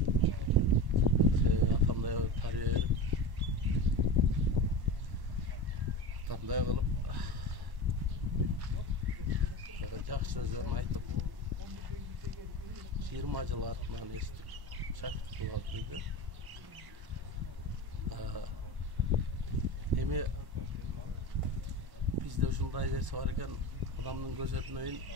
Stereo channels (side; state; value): left; late; 1.1 ms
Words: атамдай тарбия берип, атамдай кылып жакшы сөздөрүн айтып 20 жыл артынан эстип шакирт кылып алып жүрдү. Эми бизде ушундай нерсе бар экен, адамдын көз өтмөйүн